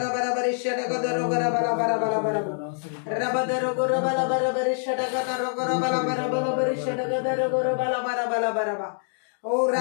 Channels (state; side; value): silent; right; digital silence